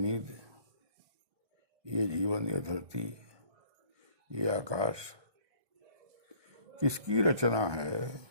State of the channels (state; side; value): late; left; 1.2 ms